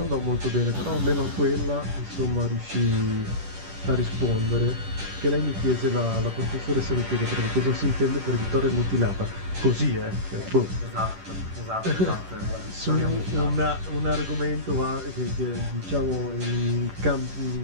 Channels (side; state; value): left; late; 10 ms